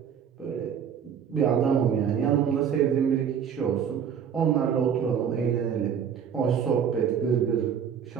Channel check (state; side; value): quieter; left; 7.9 dB